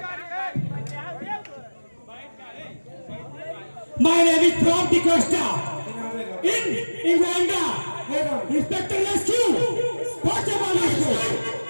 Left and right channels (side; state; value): both; inverted; correlation -1.00